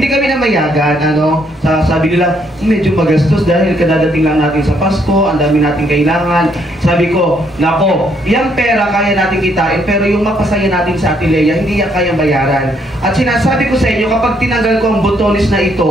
kami namayagan, sabi nila, medyo magastos dahil kadadating lang natin sa Pasko, ang dami natin kailangan. Sabi ko, nako, yung pera kaya natin kitain, pero yung mapasaya natin sa Ate Leia, hindi yan kayang bayaran. At sinasabi ko sa inyo, kapag tinanggal ko ang botones na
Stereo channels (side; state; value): both; normal; correlation 0.71